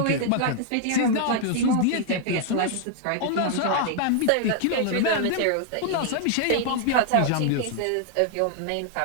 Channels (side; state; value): both; different; correlation 0.00